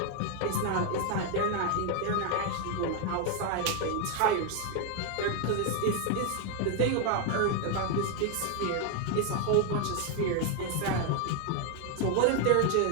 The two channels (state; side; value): different; both; correlation 0.01